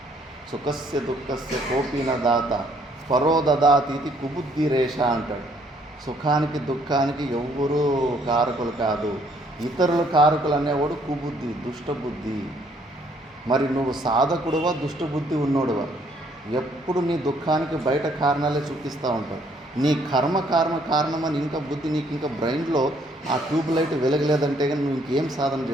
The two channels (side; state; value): both; normal; correlation 0.65